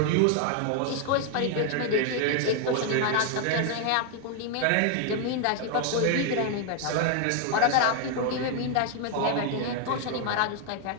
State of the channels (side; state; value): both; different; correlation 0.00